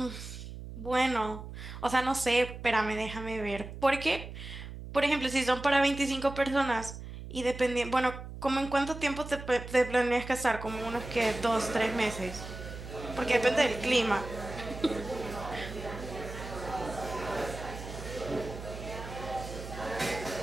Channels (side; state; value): right; noise; hum, 11 dB below the sound